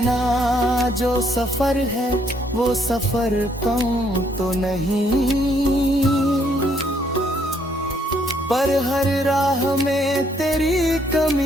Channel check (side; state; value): both; normal; correlation 0.69